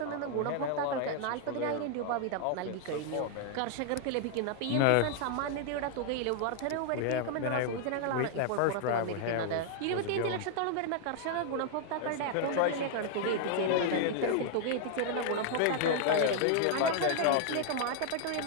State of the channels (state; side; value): different; both; correlation 0.00